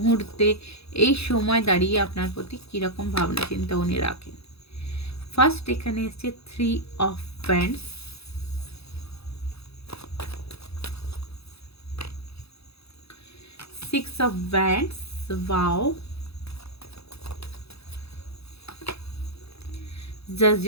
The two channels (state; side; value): late; right; 0.78 ms